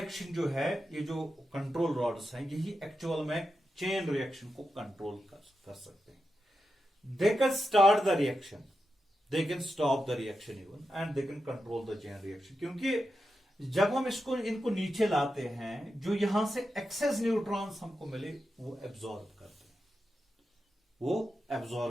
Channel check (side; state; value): both; normal; correlation 0.88